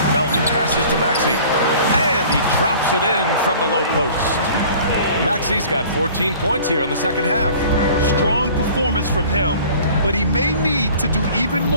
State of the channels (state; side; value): inverted; both; correlation -0.47